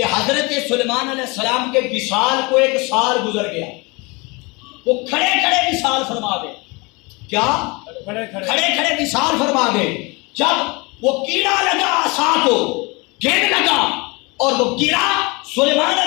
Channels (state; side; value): quieter; right; 26.9 dB